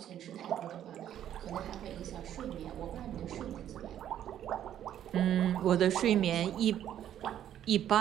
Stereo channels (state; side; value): quieter; left; 10.8 dB